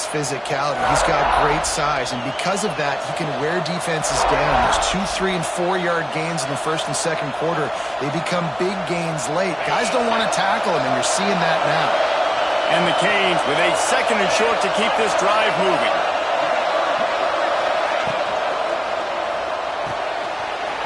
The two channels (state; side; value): identical; both; correlation 1.00